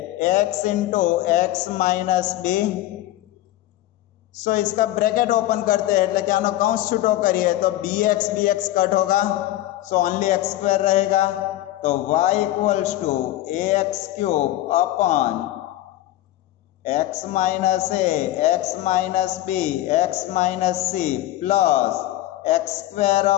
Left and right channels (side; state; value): right; quieter; 14.9 dB